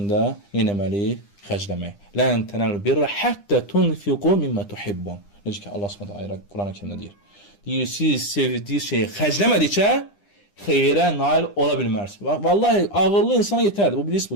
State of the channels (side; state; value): right; late; 9.9 ms